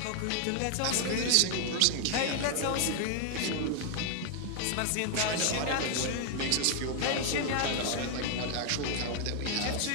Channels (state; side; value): different; both; correlation 0.00